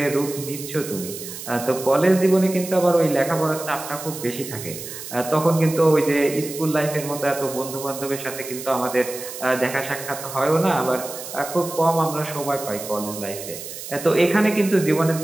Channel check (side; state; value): right; noise; hiss, 11 dB below the sound